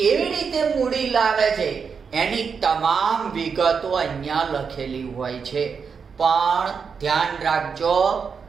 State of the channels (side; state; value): left; quieter; 6.0 dB